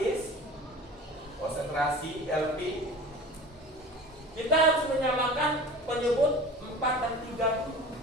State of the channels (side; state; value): both; normal; correlation 0.38